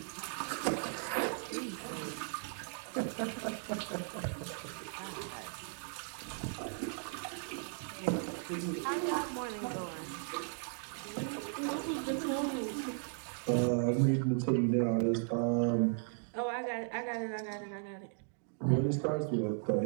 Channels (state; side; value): silent; left; 53 dB below the other